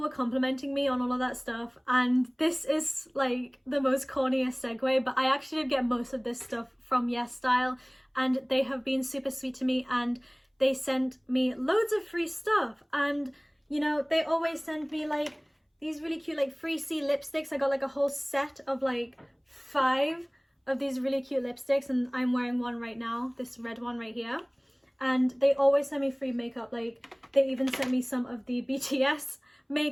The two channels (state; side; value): identical; both; correlation 1.00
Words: were complimenting me on all of that stuff. And this is like the most corniest segue, but I actually did get most of this stuff from yesstyle, and they have been super sweet to me, and they sent me loads of free stuff. And you know, they always send me like these really cute like free C lipsticks. I got like a whole set of like 5 of these really cute lipsticks, and I'm wearing one right now, this red one right here. And they always send me free makeup. Like they even sent me some of the BTS